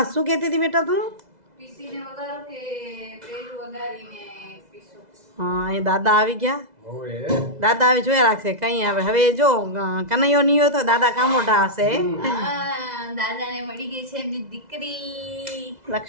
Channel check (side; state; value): left; late; 2.0 ms